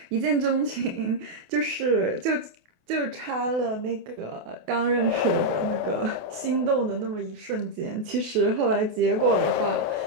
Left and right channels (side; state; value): left; late; 28 ms